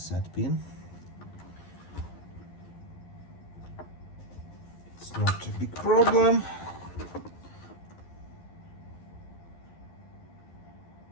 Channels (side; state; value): right; late; 11 ms